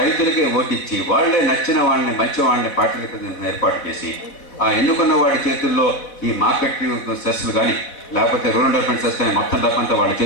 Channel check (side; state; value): right; late; 4.1 ms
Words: ఓటిచ్చి, వాళ్లే నచ్చిన వాళ్ళని, మంచి వాళ్ళని పార్టీలకు ఏర్పాటు చేసి, ఆ ఎన్నుకున్న వాడి చేతుల్లో ఈ మార్కెట్ సెస్లు కానీ లేకపోతే రూరల్ డెవలప్మెంట్ సెస్ కానీ మొత్తం డబ్బంతా వాళ్ళ